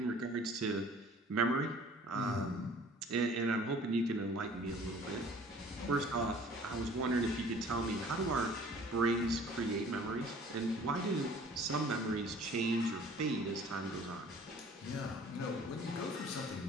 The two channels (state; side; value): normal; both; correlation 0.51